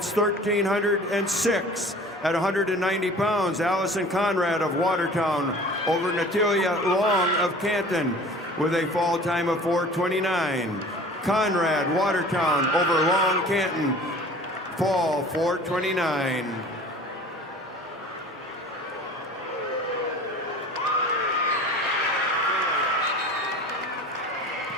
1306 at 190 pounds. Allison Conrad of Watertown over Natalia Long of Canton with a fall time of 4:29. Conrad Watertown over Long Canton, fall 4:29.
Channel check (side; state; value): both; normal; correlation 0.44